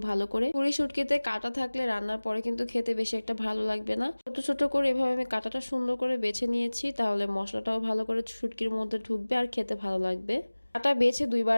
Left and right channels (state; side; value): inverted; both; correlation -1.00